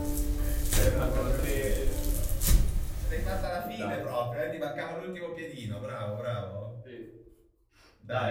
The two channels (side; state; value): both; identical; correlation 1.00